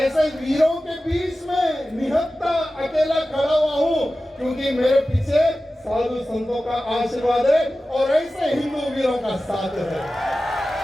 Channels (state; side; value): normal; both; correlation 0.95